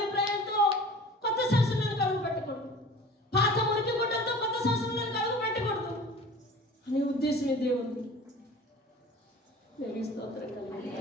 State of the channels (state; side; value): normal; both; correlation 0.41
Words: కొత్త సంవత్సరంలోనికి అడుగు పెట్టకూడదు, పాత మురికి గుడ్డలతో కొత్త సంవత్సరంలోనికి అడుగు పెట్టకూడదు అనే ఉద్దేశమే దేవుడు. స్తోత్రం కలిగి